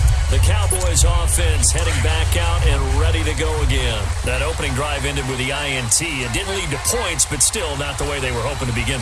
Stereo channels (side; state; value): both; identical; correlation 1.00